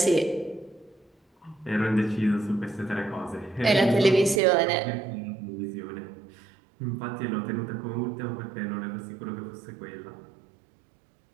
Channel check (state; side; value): drops out; left; at 4.4 s